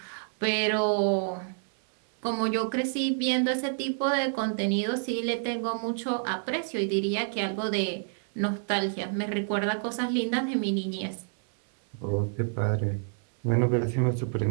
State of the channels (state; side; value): silent; left; 59 dB below the other